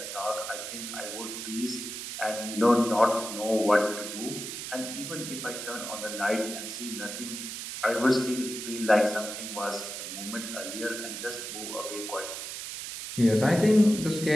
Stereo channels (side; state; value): right; noise; hiss, 7 dB below the sound